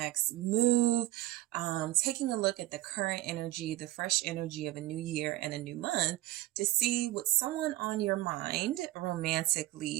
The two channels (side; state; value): left; quieter; 16.5 dB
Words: move. Taking a look at the current energy, the fresh energy of a new year and a new month to see what someone on your mind